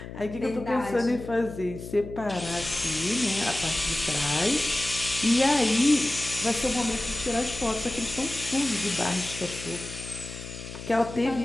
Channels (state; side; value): noise; left; hum, 11 dB below the sound